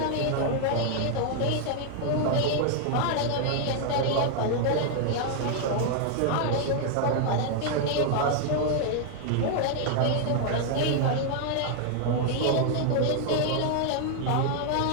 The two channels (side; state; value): both; different; correlation 0.00